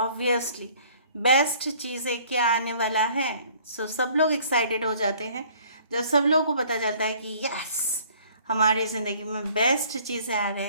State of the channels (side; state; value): both; inverted; correlation -0.55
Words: बेस्ट चीज़ें क्या आने वाला है. सब लोग एक्साइटेड हो जाते हैं जब सब लोगों को पता चलता है कि यस हमारी ज़िंदगी में बेस्ट चीज़ें आ